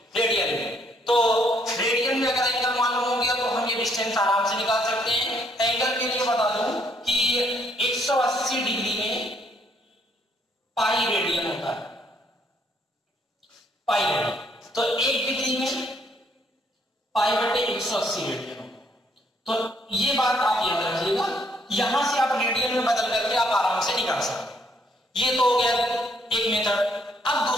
तो रेडियन में अगर एंगल मालूम हो गया तो हम ये डिस्टेंस आराम से निकाल सकते हैं। एंगल के लिए बता दूं कि 180 डिग्री में पाई रेडियन होता है, पाई रेडियन। तो 1 डिग्री में पाई बटे 180 रेडियन होता है। तो ये बात आप याद रखिएगा, यहां से आप रेडियन में बदल करके आप आराम से निकाल सकते हैं। ये तो हो गया एक मेथड। अब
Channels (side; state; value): both; normal; correlation 0.68